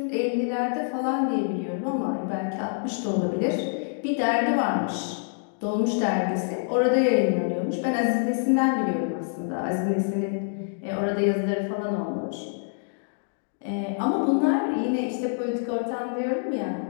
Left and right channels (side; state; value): right; silent; digital silence